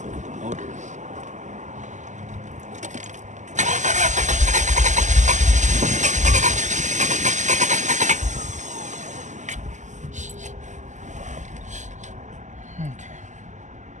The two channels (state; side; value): late; left; 0.35 ms